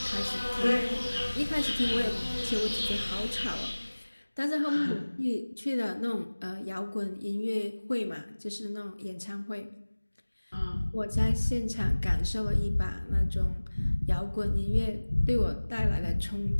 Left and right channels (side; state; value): both; inverted; correlation -1.00